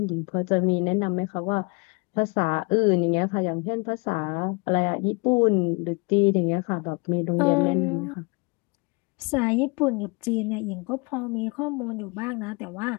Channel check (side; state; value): right; quieter; 29.7 dB